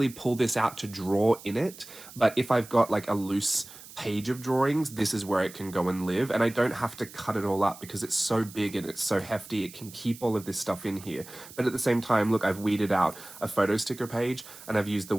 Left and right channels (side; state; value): right; noise; hiss, 17 dB below the sound